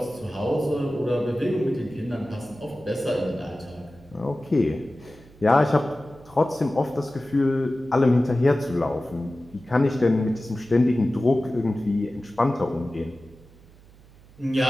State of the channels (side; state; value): right; noise; hum, 25 dB below the sound